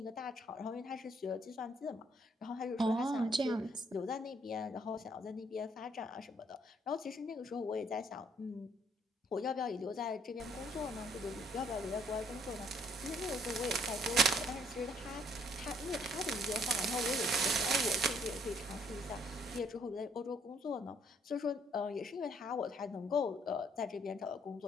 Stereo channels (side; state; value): both; normal; correlation 0.66